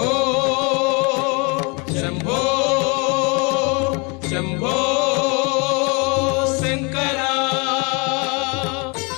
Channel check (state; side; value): quieter; right; 31.1 dB